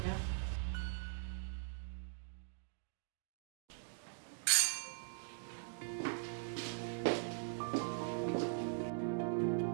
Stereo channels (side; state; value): left; silent; digital silence